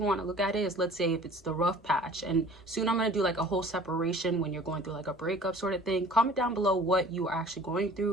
want to look at it is, let's say if it's the rough patch, and soon I'm going to do like a whole separation when you're going through like a breakup sort of thing. Comment down below what you are actually going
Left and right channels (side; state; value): both; normal; correlation 0.47